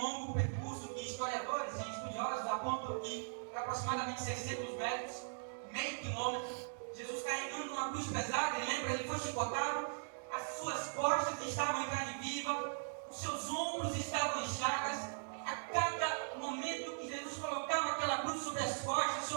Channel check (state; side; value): silent; left; digital silence